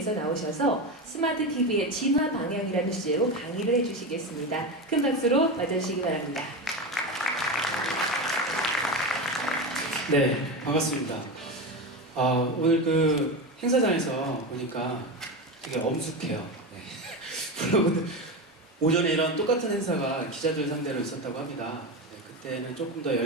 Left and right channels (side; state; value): both; normal; correlation 0.19